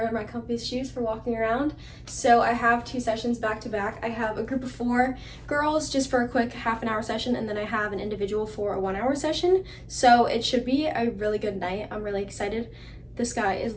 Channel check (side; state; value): both; identical; correlation 1.00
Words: my comfiest shoes for walking around. So I have 2 sessions back to back. I have a group of 4 girls just for a quick half-an-hour session, and then I have an individual for a 1-hour session. So it should be a really good night. I'm really excited. The sky